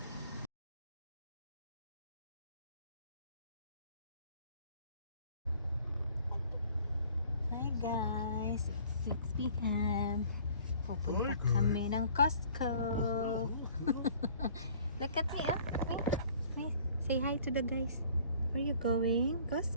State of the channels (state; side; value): inverted; both; correlation -0.54